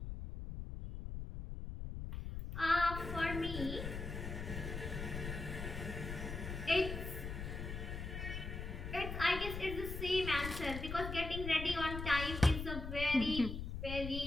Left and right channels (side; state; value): left; noise; rumble, 6 dB below the sound